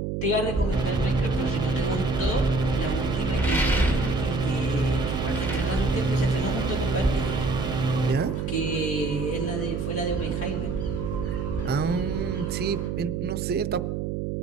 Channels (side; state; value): right; noise; hum, 2 dB below the sound